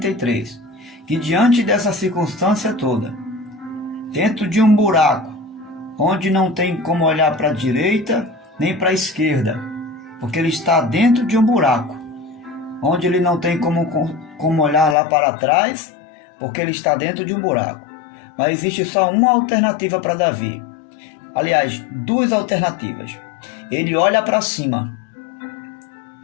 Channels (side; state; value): right; drops out; at 15.0 s